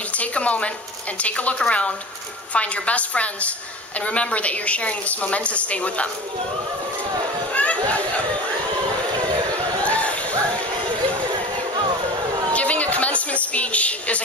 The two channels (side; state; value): both; normal; correlation 0.35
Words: to take a moment and take a look around, find your best friends, and remember that you're sharing this momentous day with them. Giving a commencement commencement speech is a